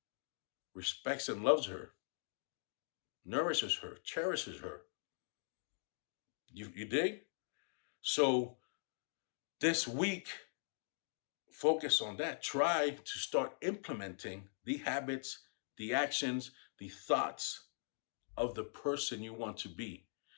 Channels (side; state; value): right; silent; digital silence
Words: respects and loves her, nourishes her, cherishes her. You dig? So this week, focus on that. Try to start implementing the habits, the actions, the thoughts of the person you want to be.